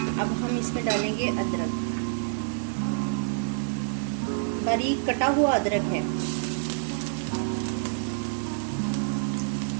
अब हम इसमें डालेंगे अदरक, बारीक कटा हुआ अदरक है।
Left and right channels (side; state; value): left; silent; digital silence